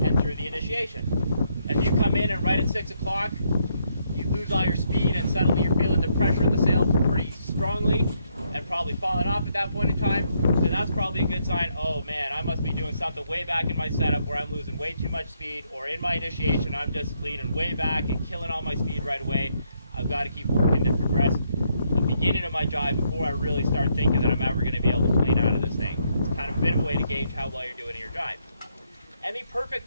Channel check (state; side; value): inverted; both; correlation -0.74